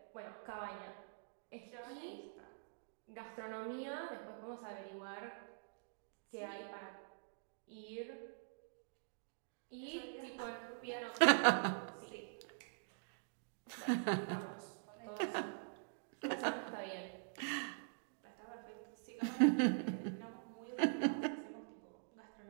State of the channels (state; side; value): silent; left; digital silence